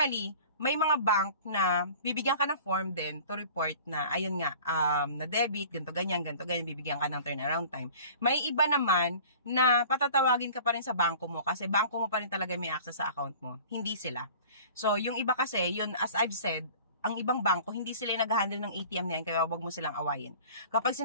may mga bank na bibigyan ka ng form din to report na, ayun nga, na debit, ganito ganyan, bibigyan ka ng turnaround time. May iba naman na patatawagin ka pa rin sa banko mo kasi banko mo pa rin talaga may access sa account mo. Hindi sila. So, yung iba kasi, yun, as I've said, ang ibang bangko, hindi sila yung nag-handle ng ATM na yan, kaya wag mo silang awayin. Kapag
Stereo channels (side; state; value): both; inverted; correlation -0.44